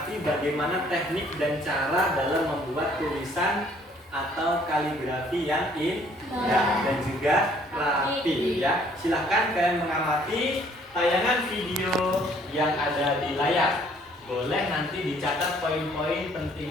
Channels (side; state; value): both; normal; correlation 0.61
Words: bagaimana teknik dan cara dalam membuat tulisan atau kaligrafi yang indah dan juga rapi ya. Silahkan kalian mengamati tayangan video yang ada di layar. Boleh nanti dicatat poin-poin